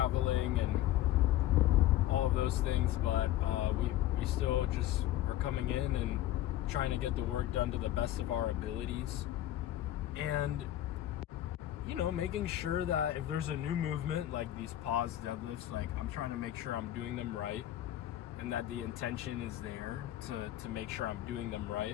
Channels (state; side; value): quieter; right; 13.4 dB